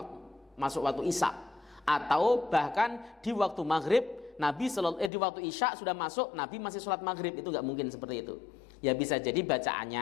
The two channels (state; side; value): drops out; right; at 5.1 s